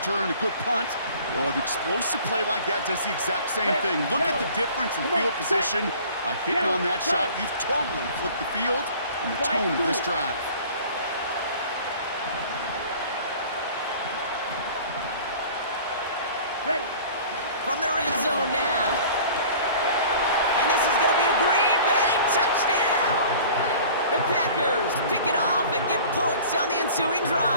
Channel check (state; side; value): inverted; both; correlation -0.46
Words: a good punt. Well, an explosive play like that does the exact same thing. Look at the difference in field position. By hitting on that shot, you've totally flipped the field and the tone of this drive. Ready. From the red zone now. And this is going to be a Green Bay touchdown. The Packers pick it off and get points on the ensuing